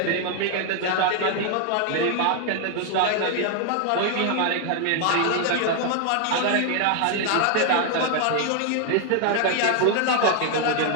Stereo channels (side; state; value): both; different; correlation 0.00